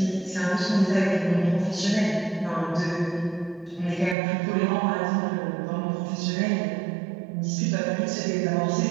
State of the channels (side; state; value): left; drops out; at 4.2 s